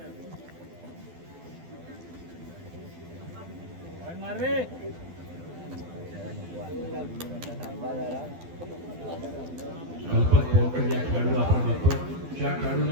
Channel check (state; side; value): late; left; 12 ms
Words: कल्पक बोरकर या खेळाडूला आपण बघतोय. ज्या